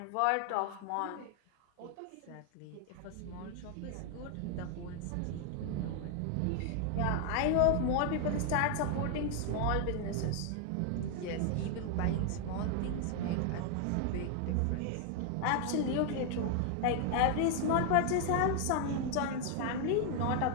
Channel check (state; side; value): different; both; correlation 0.00